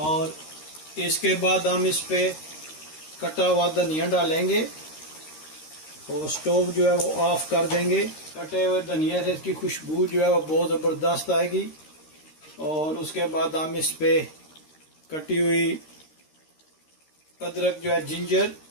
इसके बाद हम इस पे कटा हुआ धनिया डालेंगे और स्टोव जो है वो ऑफ कर देंगे। कटे हुए धनिया से इसकी खुशबू जो है वो बहुत ज़बरदस्त आएगी। और उसके बाद हम इस पे कटी हुई अदरक जो है जिंजर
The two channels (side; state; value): right; late; 13 ms